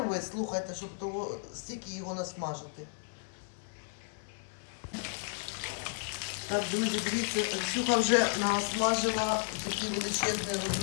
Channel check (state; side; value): silent; right; 56 dB below the other